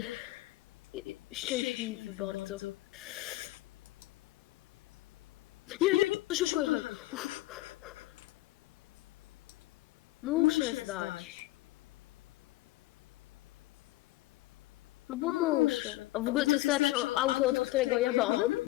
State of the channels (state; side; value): quieter; right; 18.0 dB